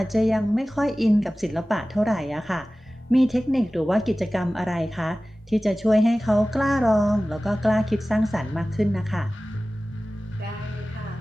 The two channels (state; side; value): normal; both; correlation 0.97